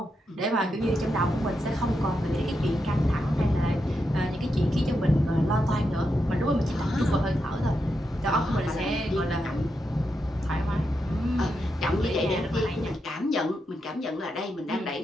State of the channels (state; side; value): normal; both; correlation 0.85